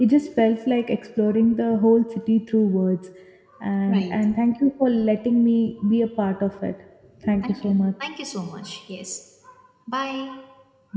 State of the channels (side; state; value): both; identical; correlation 1.00